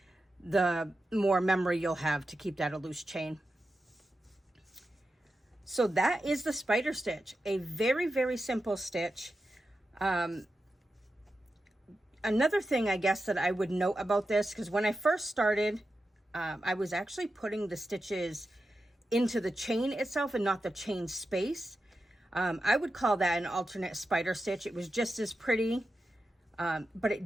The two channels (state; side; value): normal; both; correlation 0.90